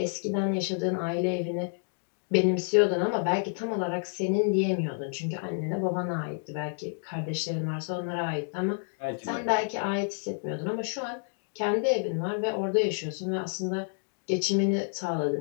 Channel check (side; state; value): right; silent; 55 dB below the other